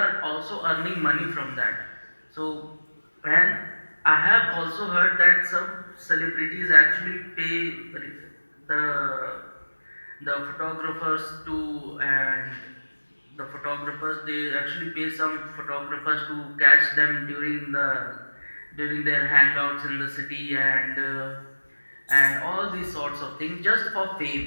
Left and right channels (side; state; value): both; inverted; correlation -1.00